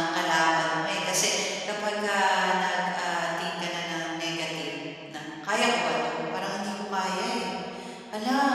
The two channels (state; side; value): identical; both; correlation 1.00